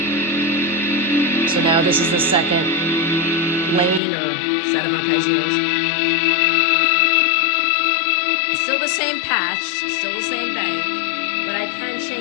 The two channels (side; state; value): right; drops out; at 4.0 s